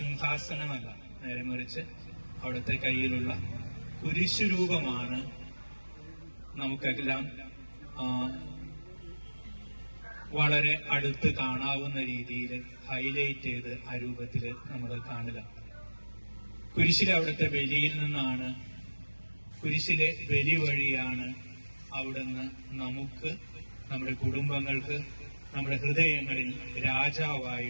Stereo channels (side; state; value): both; inverted; correlation -1.00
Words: നേരെ മറിച്ച് അവിടുത്തെ കയ്യിലുള്ള കുരിശുരൂപമാണ് നമുക്കെല്ലാം വളരെ അടുത്ത് കാണാവുന്ന രീതിയിൽ ഹൈലൈറ്റ് ചെയ്ത് ആ രൂപത്തിൽ നമ്മൾ കാണുക. കുരിശിലെ അവിടുത്തെ ബലിയിൽ നിന്നാണ്, കുരിശിലെ ബലി വഴിയാണ് അവിടുന്ന് നമുക്ക്, നമ്മുടെ കുടുംബങ്ങൾക്ക്, നമ്മുടെ ഹൃദയങ്ങളിൽ